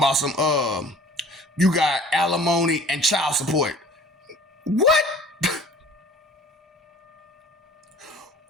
some, you got alimony and child support. What?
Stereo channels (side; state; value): both; normal; correlation 0.48